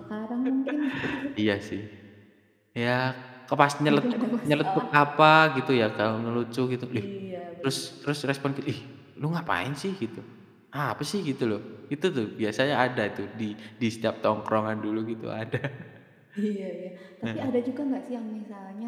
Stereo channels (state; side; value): identical; both; correlation 1.00